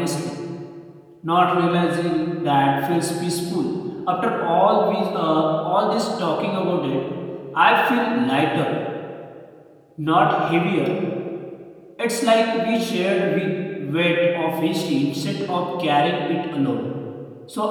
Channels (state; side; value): identical; both; correlation 1.00